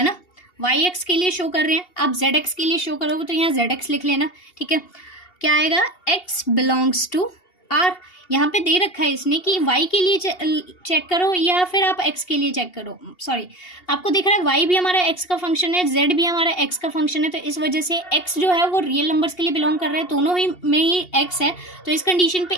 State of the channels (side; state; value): right; late; 2.8 ms